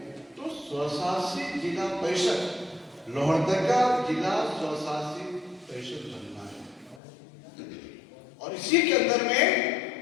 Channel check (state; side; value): drops out; right; at 7.0 s